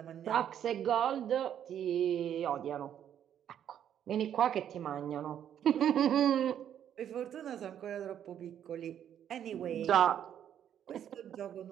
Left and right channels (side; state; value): left; quieter; 9.7 dB